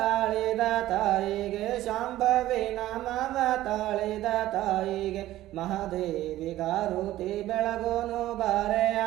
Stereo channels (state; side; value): quieter; left; 14.9 dB